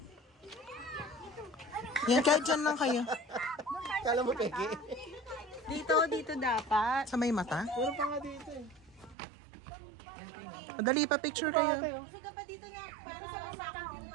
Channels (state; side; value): drops out; left; at 9.2 s